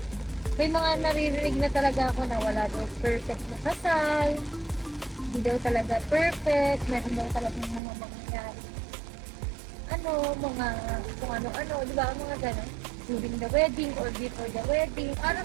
may mga naririnig na talaga ako na wala daw perfect na kasal. Hindi daw talaga perfect. Meron daw talaga mga mangyayari. Mga kung ano-ano, di ba? Mga gano'n. During the wedding or before the wedding. Para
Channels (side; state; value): left; drops out; at 7.8 s